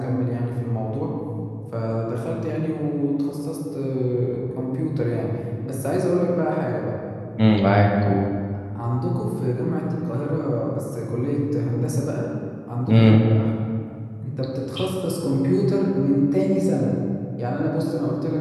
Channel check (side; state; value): both; identical; correlation 1.00